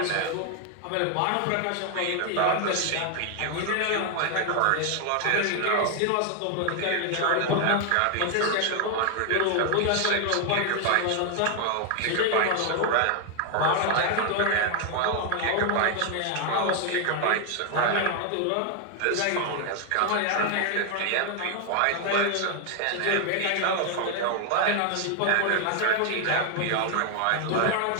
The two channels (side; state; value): both; different; correlation 0.00